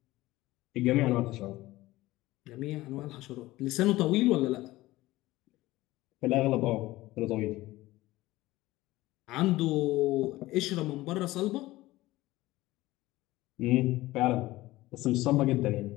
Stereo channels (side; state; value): right; quieter; 17.9 dB